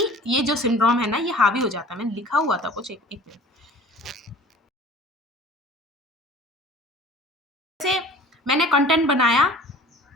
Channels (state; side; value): normal; both; correlation 0.45